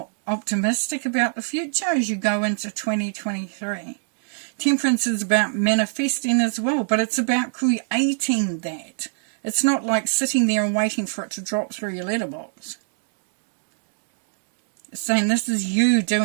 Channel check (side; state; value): left; silent; digital silence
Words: optimistic about the future as you go into 2023. Temperance is about manifesting as well, but it's about creating that. It's not like sitting there and waiting for it to drop through your letterbox. It's saying this is you